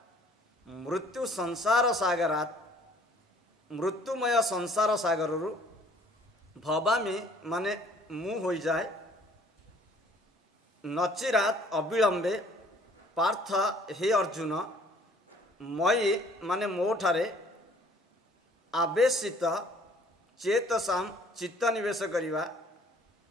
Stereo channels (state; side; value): normal; both; correlation 0.57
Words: मृत्यु संसार सागरात मृत्युमय संसार सागर भवामी माने मु हो जाए नचिरात अविलंबे पार्थ हे अर्जुन मई माने मोठारे आवेशित चेतसाम चित्त निवेश करिवा